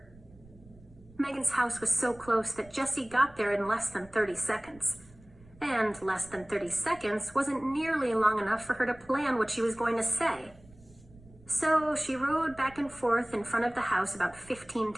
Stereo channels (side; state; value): right; noise; rumble, 24 dB below the sound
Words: Megan's house was so close that Jessie got there in less than 30 seconds. And less than 30 seconds wasn't nearly long enough for her to plan what she was going to say. So she rode back and forth in front of the house about 15